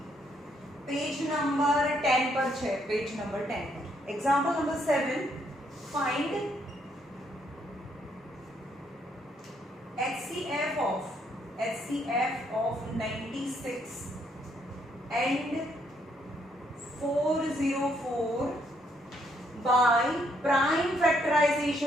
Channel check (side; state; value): both; normal; correlation 0.72